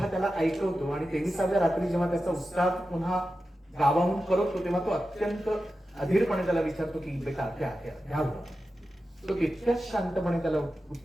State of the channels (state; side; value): normal; both; correlation 0.92